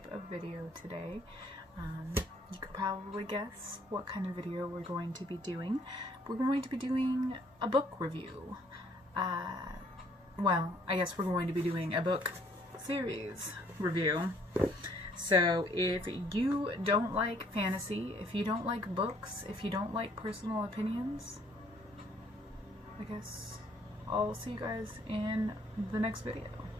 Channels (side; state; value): both; normal; correlation 0.63